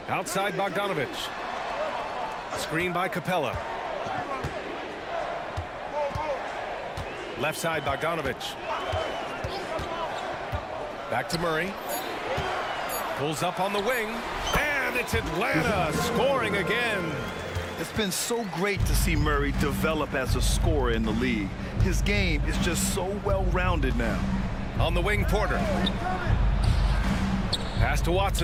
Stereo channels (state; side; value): identical; both; correlation 1.00